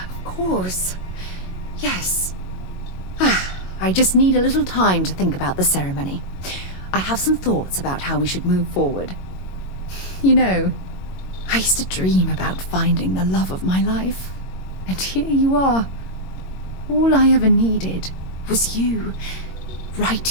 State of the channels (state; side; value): late; right; 22 ms